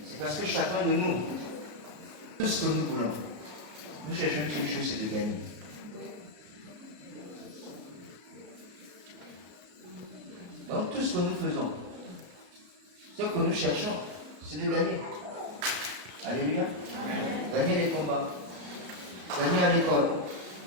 C'est parce que chacun de nous, tout ce que nous voulons, nous cherchons une seule chose, c'est de gagner. Donc tout ce que nous faisons, ce que nous cherchons, c'est de gagner. Alléluia. Amen. Gagner les combats, gagner à l'école,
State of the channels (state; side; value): late; left; 33 ms